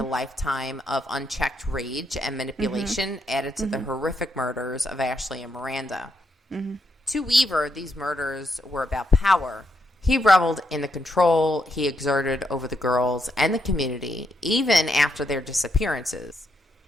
lifetime of unchecked rage and manipulation, added to the horrific murders of Ashley and Miranda. To Weaver, these murders were about power. He reveled in the control he exerted over the girls and the community, even after their disappearances.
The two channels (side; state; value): both; normal; correlation 0.79